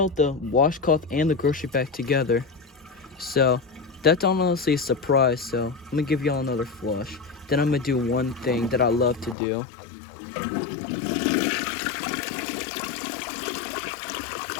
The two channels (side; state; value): right; drops out; at 9.3 s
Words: the washcloth and the grocery bag together. So that's honestly a surprise. So I'm gonna give y'all another flush. Then I'm gonna do one thing that I love to do.